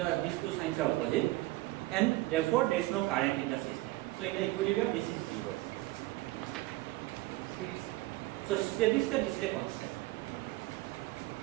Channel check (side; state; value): left; quieter; 19.4 dB